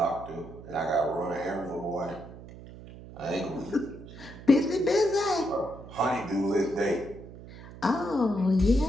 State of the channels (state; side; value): noise; right; hum, 16 dB below the sound